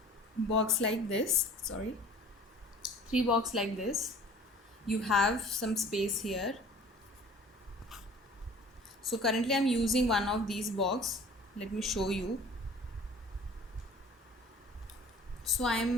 box like this sorry three box like this. You have some space here. So currently I'm using one of these box. Let me show you. So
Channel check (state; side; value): normal; both; correlation 0.47